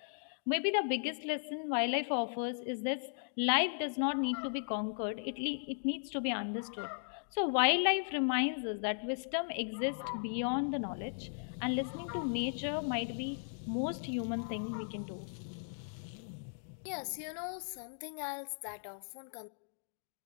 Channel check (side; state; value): right; silent; digital silence